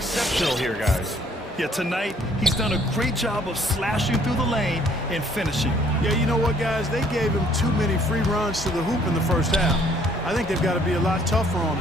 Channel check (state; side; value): normal; both; correlation 0.62